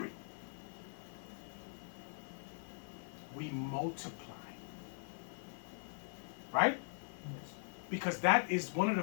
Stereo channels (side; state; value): right; silent; 50 dB below the other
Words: We multiply. Right? Yes. Because that is one of